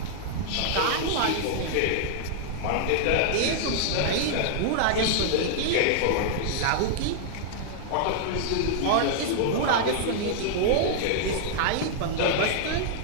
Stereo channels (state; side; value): different; both; correlation -0.01